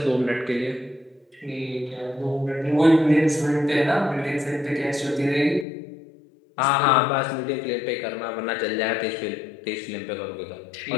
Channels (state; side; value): drops out; right; at 5.7 s